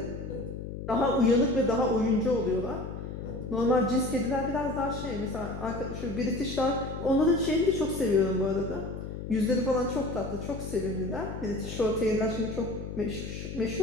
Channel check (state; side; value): noise; left; hum, 8 dB below the sound